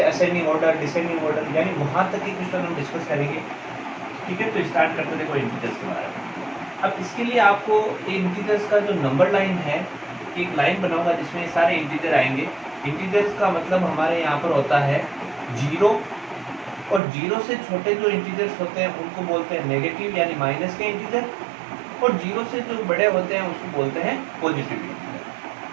असेंडिंग ऑर्डर, डिसेंडिंग ऑर्डर, यानी वहाँ तक के क्वेश्चन हम डिस्कस करेंगे। ठीक है, तो स्टार्ट करते देखो इंटीजर्स के बारे में। अब इसके लिए आपको इंटीजर्स का जो नंबर लाइन है, एक लाइन बनाऊंगा जिसमें सारे इंटीजर आएंगे। इंटीजर्स का मतलब हमारे यहाँ पर होता है जीरो, और जीरो से छोटे जो इंटीजर्स होते हैं उनको बोलते हैं नेगेटिव यानी माइनस के इंटीजर, और जीरो से जो बड़े होते हैं उसको बोलते हैं पॉजिटिव इंटीजर।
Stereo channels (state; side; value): drops out; left; at 17.0 s